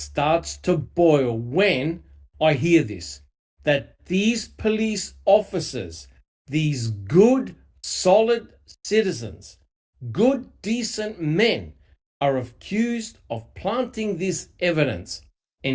to boil when I hear this, that these police officers, these good, solid citizens, good, decent men, are accused of planting this evidence,"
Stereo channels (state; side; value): identical; both; correlation 1.00